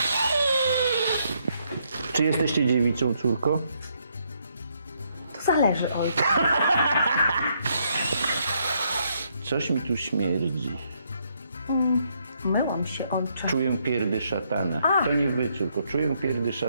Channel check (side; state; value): both; inverted; correlation -0.74